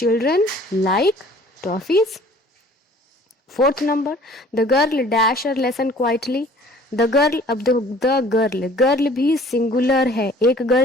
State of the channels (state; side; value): normal; both; correlation 0.52